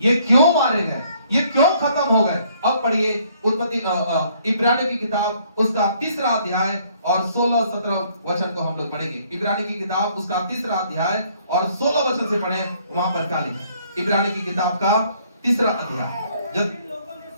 ये क्यों मारे गए? ये क्यों खत्म हो गए? अब पढ़िए उत्पत्ति इब्रानियों की किताब उसका 3रा अध्याय और 16-17 वचन को हम लोग पढ़ेंगे। इब्रानियों की किताब उसका 3रा अध्याय और 16 वचन से पढ़ें। वहां पर क्या लिखा है? इब्रानियों की किताब का 3रा अध्याय। जब लोगों ने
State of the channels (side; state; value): both; inverted; correlation -0.64